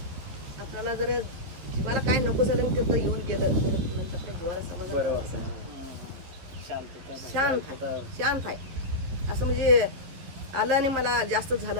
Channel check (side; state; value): left; late; 11 ms